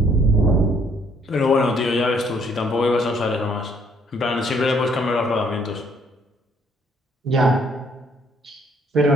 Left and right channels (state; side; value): normal; both; correlation 0.64